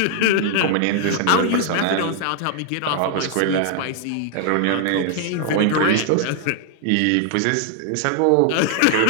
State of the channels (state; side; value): different; both; correlation 0.00